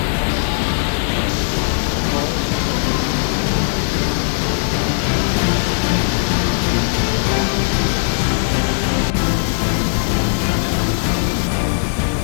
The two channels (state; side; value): silent; right; digital silence